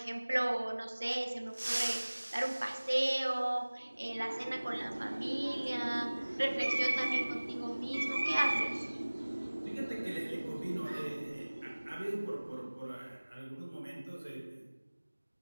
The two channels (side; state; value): both; inverted; correlation -1.00